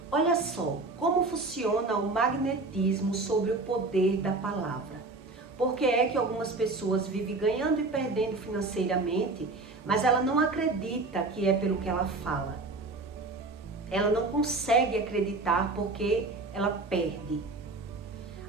Olha só, como funciona o magnetismo sobre o poder da palavra. Por que é que algumas pessoas vivem ganhando e perdendo financeiramente, mas ela não acredita que é pelo que ela fala. Ela não consegue acreditar porque ela perde.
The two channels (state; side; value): quieter; left; 3.4 dB